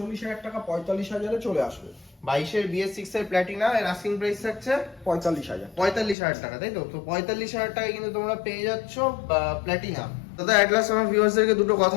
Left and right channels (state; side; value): drops out; right; at 6.2 s